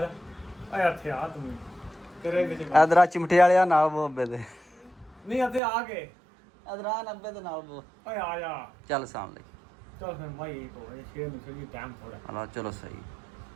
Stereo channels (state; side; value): drops out; left; at 5.6 s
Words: ਜਾ ਆ ਇੱਥੇ ਆ ਤੂੰ ਤੇਰੇ ਵਿੱਚ ਇਧਰ ਚਿਮਟੇ ਵਾਲਿਆ ਨਾਲ ਬੋਬੇ ਦੇ ਨਹੀਂ ਇੱਥੇ ਆ ਕੇ ਇਧਰ 90 ਦੇ ਨਾਲ ਬੋ ਓਏ ਆ ਜਾ ਚੱਲ ਸਾਹਮਣੇ ਚਲ ਫਿਰ ਮਾਈ ਕੋ ਸ਼ੇਰ ਨੂੰ ਚਲੀ ਟਾਈਮ ਥੋੜਾ ਆਲਾ ਚਲੋ ਸਹੀ।